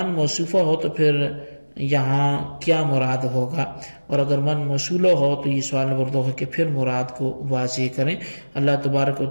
موصوفہ ہو تو پھر یہاں کیا مراد ہوگا، اور اگر من موصولہ ہو تو یہ سوال نمبر 2 ہے کہ پھر مراد کو واضح کریں۔ اللہ تبارک و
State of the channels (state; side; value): inverted; both; correlation -1.00